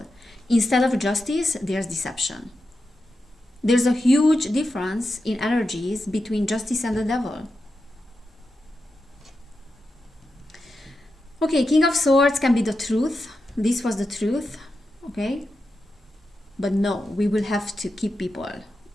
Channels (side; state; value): both; normal; correlation 0.89